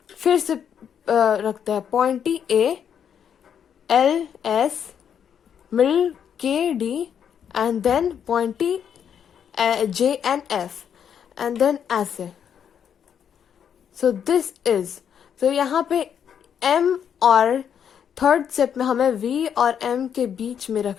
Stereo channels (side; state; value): right; quieter; 8.2 dB